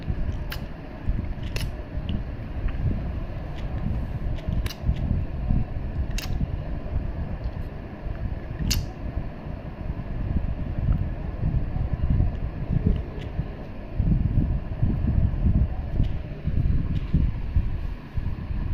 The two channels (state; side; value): identical; both; correlation 1.00